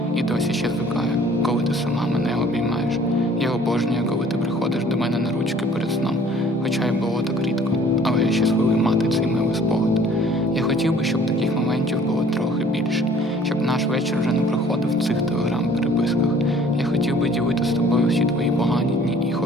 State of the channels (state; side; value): normal; both; correlation 0.54